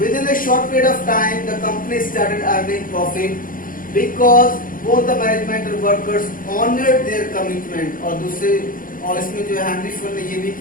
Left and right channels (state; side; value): late; right; 0.40 ms